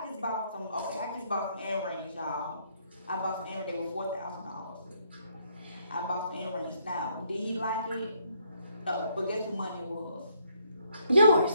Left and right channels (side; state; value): both; inverted; correlation -0.70